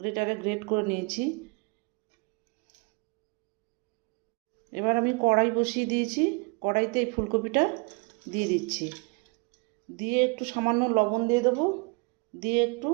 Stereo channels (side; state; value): left; quieter; 30.4 dB